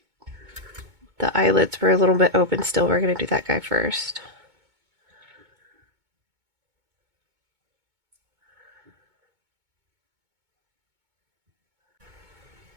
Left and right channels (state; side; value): late; left; 2.2 ms